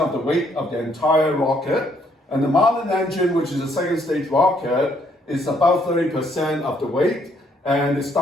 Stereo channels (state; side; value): normal; both; correlation 0.69